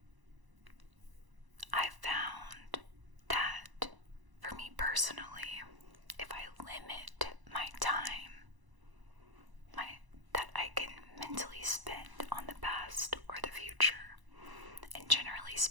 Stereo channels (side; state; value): left; late; 1.0 ms